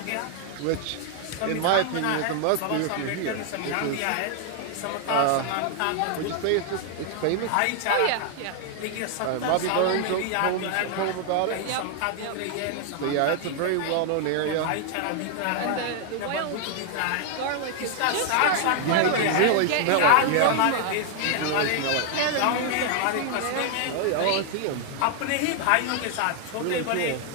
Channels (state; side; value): different; both; correlation 0.00